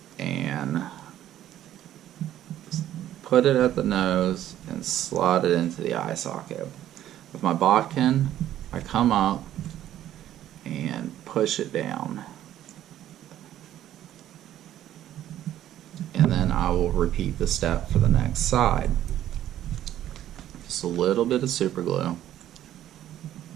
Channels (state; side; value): quieter; left; 12.2 dB